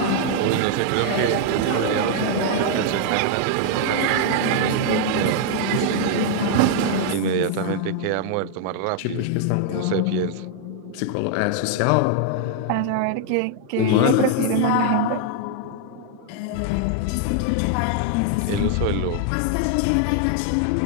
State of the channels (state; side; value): different; both; correlation 0.00